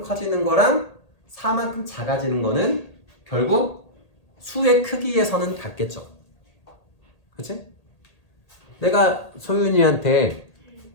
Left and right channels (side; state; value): right; late; 1.8 ms